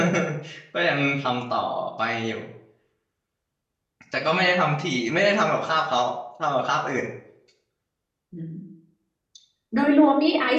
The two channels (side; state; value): both; identical; correlation 1.00